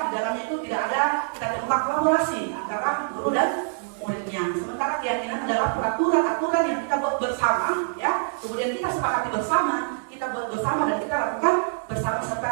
di dalamnya itu tidak ada kita temukan kolaborasi antara guru dan muridnya. Sementara keyakinan adalah peraturan-aturan yang kita buat bersama ya, kemudian kita sepakati bersama, kita buat bersama dan kita lakukan bersama serta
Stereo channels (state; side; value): silent; left; 62 dB below the other